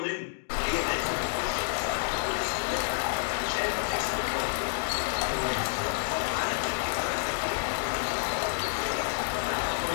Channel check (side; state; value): right; silent; digital silence